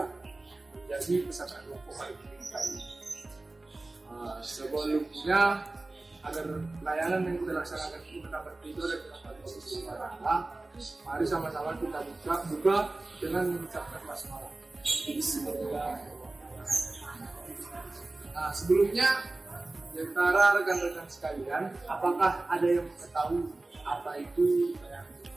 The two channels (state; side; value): quieter; left; 3.0 dB